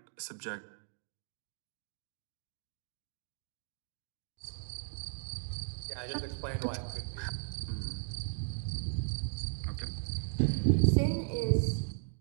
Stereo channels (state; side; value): silent; left; digital silence